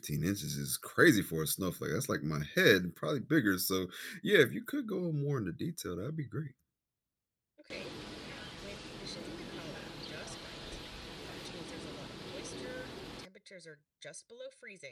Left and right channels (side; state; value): both; identical; correlation 1.00